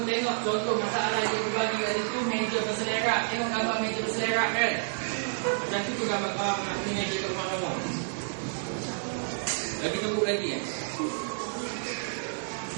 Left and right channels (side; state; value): left; silent; digital silence